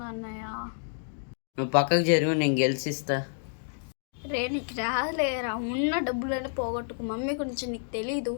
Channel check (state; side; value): silent; right; digital silence